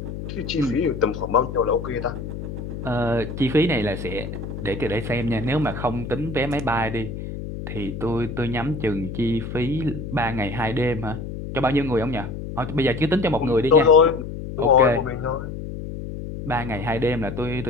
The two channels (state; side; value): noise; left; hum, 8 dB below the sound